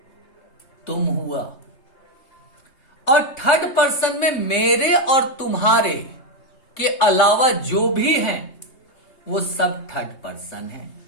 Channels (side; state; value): right; late; 3.2 ms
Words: तुम हुआ। और थर्ड पर्सन में मेरे और तुम्हारे के अलावा जो भी हैं वो सब थर्ड पर्सन है।